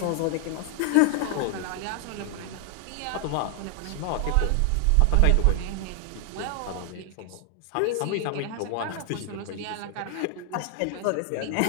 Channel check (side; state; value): both; different; correlation 0.00